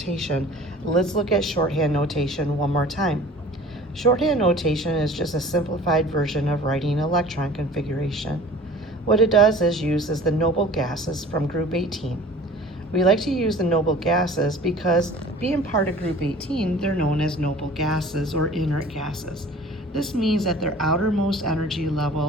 let's look at shorthand notation one more time. Shorthand notation is just a simplified version of writing electron configuration. What it does is uses the noble gases from group 18. We like to use the noble gases because being part of group 18, they're known as noble gases or inert gases. This means that their outermost energy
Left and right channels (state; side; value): normal; both; correlation 0.45